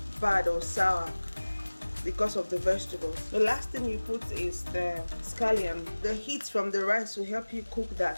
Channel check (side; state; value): both; inverted; correlation -1.00